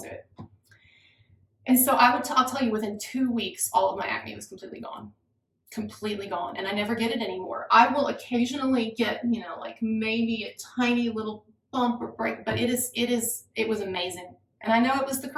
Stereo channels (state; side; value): identical; both; correlation 1.00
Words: it. And so I'll tell you, within 2 weeks, all of my acne was completely gone. Completely gone, and I never get it anymore. I will occasionally get, you know, like maybe a tiny little bump or break, but it was amazing. And I know it was the